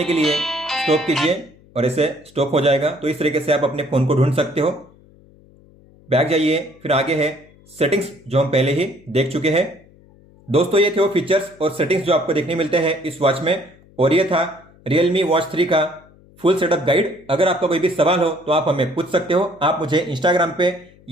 के लिए स्टॉप कीजिए और इसे स्टॉप हो जाएगा। तो इस तरीके से आप अपने फोन को ढूंढ सकते हो। बैक जाइए, फिर आगे है सेटिंग्स, जो हम पहले ही देख चुके हैं। दोस्तों ये थे वो फीचर्स और सेटिंग्स जो आपको देखने मिलते हैं इस वॉच में, और ये था Realme Watch 3 का फुल सेटअप गाइड। अगर आपका कोई भी सवाल हो तो आप हमें पूछ सकते हो। आप मुझे इंस्टाग्राम पे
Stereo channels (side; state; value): left; noise; hum, 27 dB below the sound